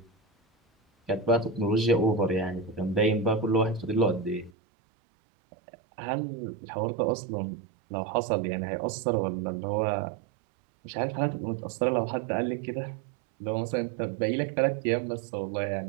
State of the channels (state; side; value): drops out; left; at 4.5 s